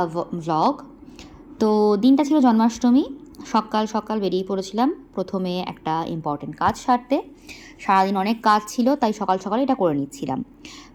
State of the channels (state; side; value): identical; both; correlation 1.00